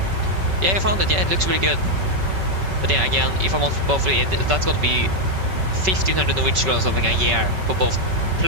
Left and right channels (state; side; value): late; left; 5.3 ms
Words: Yeah, I found it. Yeah, it looks really good. But yeah, again, if I want both of it, that's going to be 1,500 Norwegian kroner or something a year for both.